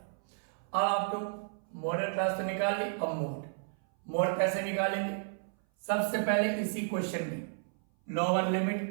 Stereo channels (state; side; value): silent; left; 56 dB below the other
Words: अब आप लोग मॉडल क्लास तो निकाल ली, अब मोड कैसे निकालेंगे? सबसे पहले इसी क्वेश्चन में लोअर